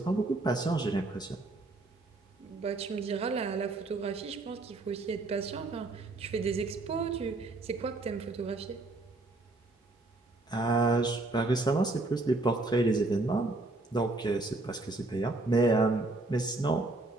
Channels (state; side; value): quieter; left; 3.1 dB